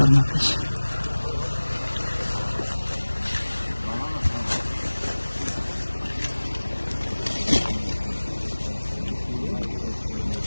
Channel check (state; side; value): inverted; both; correlation -1.00